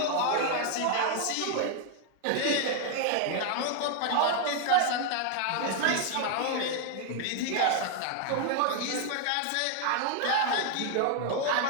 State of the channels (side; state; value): both; different; correlation 0.00